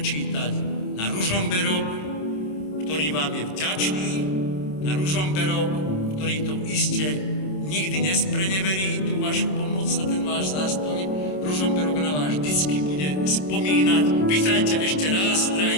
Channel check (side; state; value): right; late; 27 ms